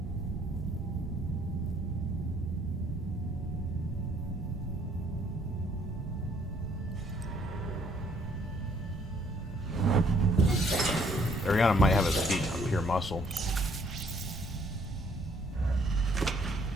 Ariana might have a speed on pure muscle.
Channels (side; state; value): both; normal; correlation 0.64